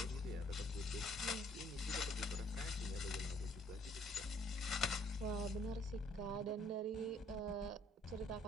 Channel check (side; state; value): both; normal; correlation 0.62